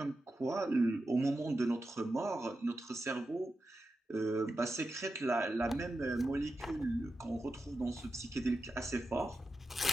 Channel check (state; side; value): normal; both; correlation 0.90